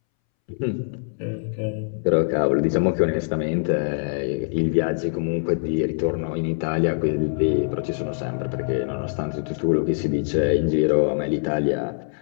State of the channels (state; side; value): silent; right; 63 dB below the other